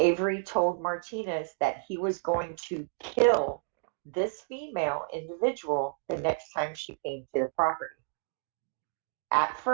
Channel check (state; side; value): silent; left; digital silence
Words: told Martinez that he was going to kill this female individual the next time she came to the property. At